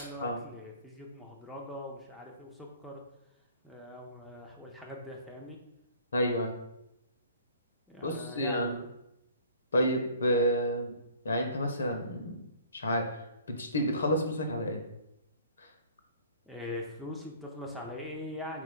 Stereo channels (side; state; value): both; inverted; correlation -0.51